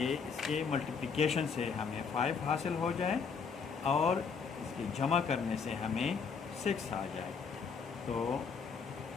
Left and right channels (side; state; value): right; quieter; 5.7 dB